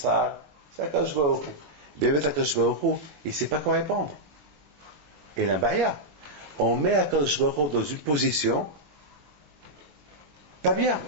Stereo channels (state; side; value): late; left; 21 ms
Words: C'est Kadosh Baruch Hu. Akadosh Baruch Hu, il ne sait pas quoi répondre. Et la baya, on met Akadosh Baruch Hu dans une position pas bien.